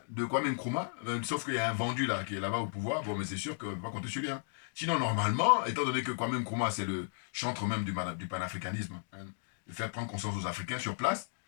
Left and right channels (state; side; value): silent; right; digital silence